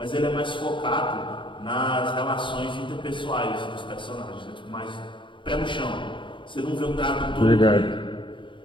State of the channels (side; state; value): right; late; 0.24 ms